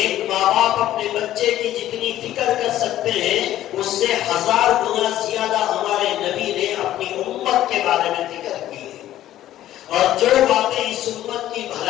ماں باپ اپنے بچے کی جتنی فکر کر سکتے ہیں اس سے 1000 گنا زیادہ ہمارے نبی نے اپنی امت کے بارے میں فکر کی ہے، اور جو باتیں اس امت کی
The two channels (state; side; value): quieter; right; 13.2 dB